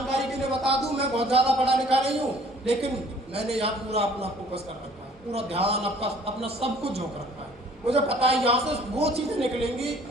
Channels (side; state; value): both; normal; correlation 0.56